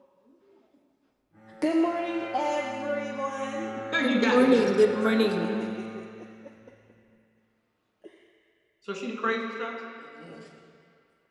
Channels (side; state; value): both; identical; correlation 1.00